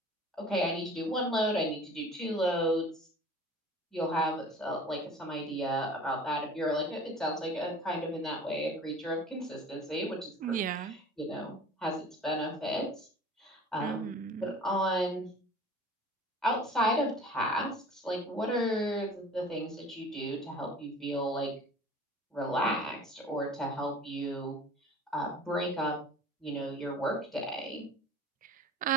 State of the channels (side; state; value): both; normal; correlation 0.44